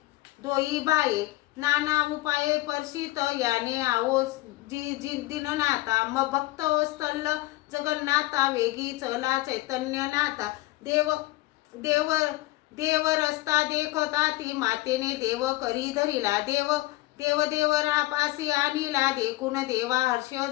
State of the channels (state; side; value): quieter; right; 18.7 dB